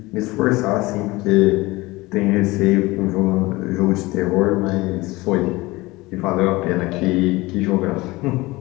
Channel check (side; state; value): right; quieter; 21.1 dB